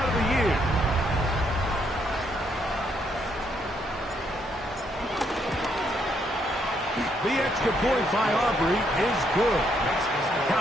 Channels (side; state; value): both; normal; correlation 0.73